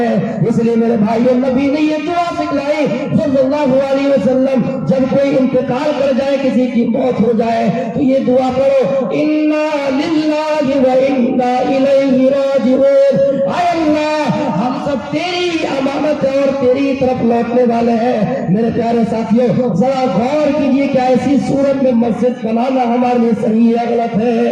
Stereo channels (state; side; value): identical; both; correlation 1.00